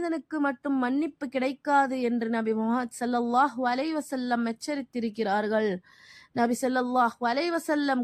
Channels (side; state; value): both; identical; correlation 1.00